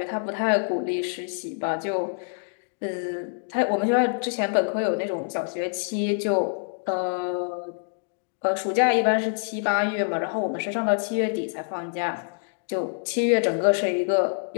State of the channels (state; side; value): silent; right; digital silence